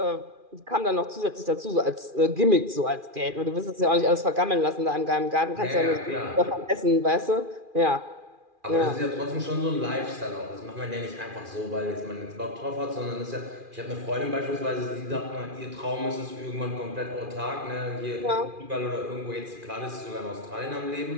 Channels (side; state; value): left; late; 2.4 ms